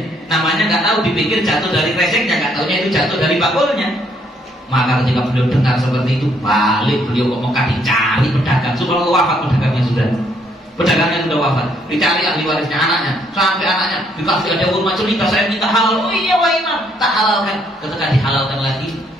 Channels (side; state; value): both; normal; correlation 0.69